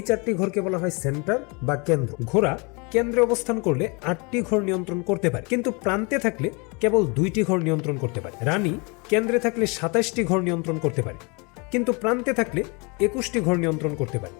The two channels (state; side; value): quieter; right; 30.3 dB